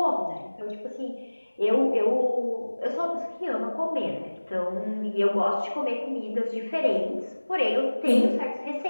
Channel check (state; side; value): inverted; both; correlation -1.00